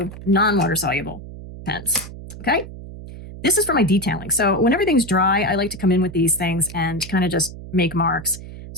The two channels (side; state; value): right; noise; hum, 13 dB below the sound